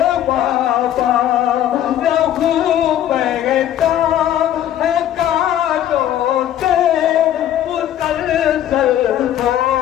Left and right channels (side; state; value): right; quieter; 11.5 dB